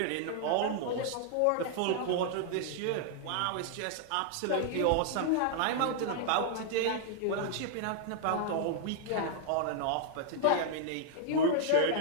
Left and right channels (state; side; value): different; both; correlation -0.01